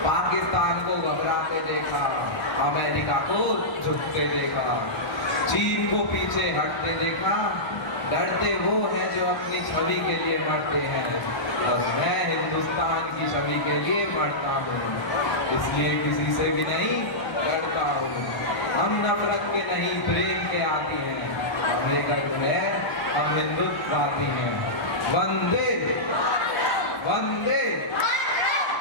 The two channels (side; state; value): right; late; 1.0 ms